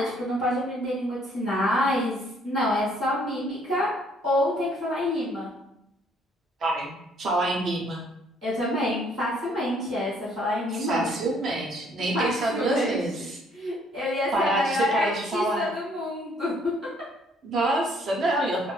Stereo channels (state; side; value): normal; both; correlation 0.63